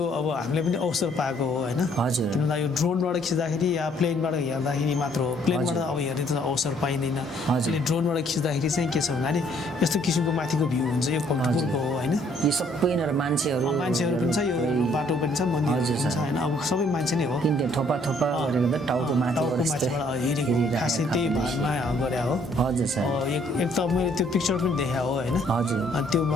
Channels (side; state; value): both; normal; correlation 0.64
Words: अब हामीले पनि अवसर पाएको हो होइन। किनभने यो ड्रोनबाट खिच्दाखेरि या प्लेनबाट हेर्दाखेरि मात्र हो, प्लेनबाट अब हेर्ने त अवसर पिक्चर पाइँदैन हजुर। अहिले ड्रोनबाट खिच्दाखेरि चाहिँ के छ भन्दाखेरि यस्तो किसिमको माथिको भ्यू हुन्छ यो कम्फर्टेबलको हो होइन यो सबै यिनीहरू मान्छेहरू पनि छ यो बाटो पनि छ मन्दिर पनि छ होइन अब सबै मान्छे नै हो किन थोपा गरेको त टाउको माथिबाट माथिबाट हेरेको खासै त्यही भागमा गरे हो हजुर सर एक त मैले त्यो पिक्चर पनि देखाएको हो होइन हजुर अनि त्यो